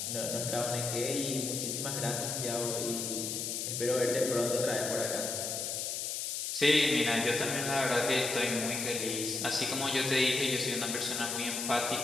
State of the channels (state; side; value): noise; left; hiss, 2 dB below the sound